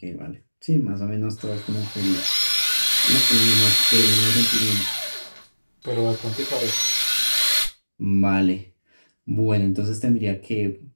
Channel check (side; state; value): both; inverted; correlation -1.00